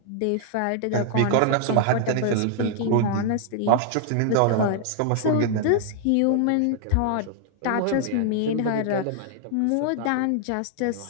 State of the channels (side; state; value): both; different; correlation 0.00